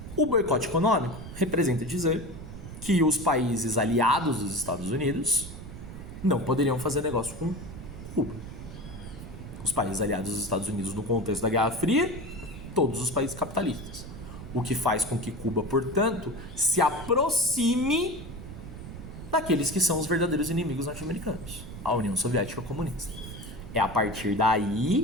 O boicote econômico representa dizer que os países aliados dos Estados Unidos não poderiam fazer negócio com Cuba. Os países aliados dos Estados Unidos no contexto da Guerra Fria, todos os países capitalistas. O que faz com que Cuba, portanto, se aproxime daqueles que são os verdadeiros inimigos norte-americanos, a União Soviética Comunista. É a partir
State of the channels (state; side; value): noise; right; rumble, 12 dB below the sound